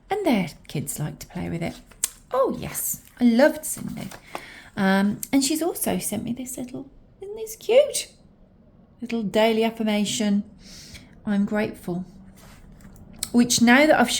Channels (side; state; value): both; identical; correlation 1.00